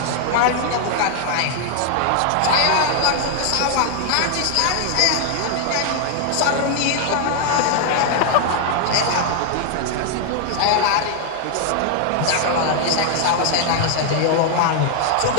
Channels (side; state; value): both; different; correlation 0.00